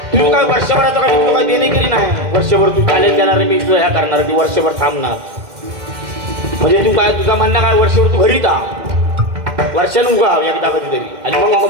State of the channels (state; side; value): late; left; 2.1 ms